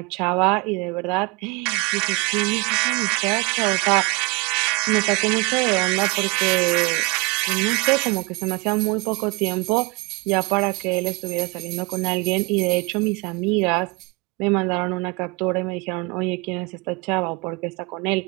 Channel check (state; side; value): quieter; left; 27.4 dB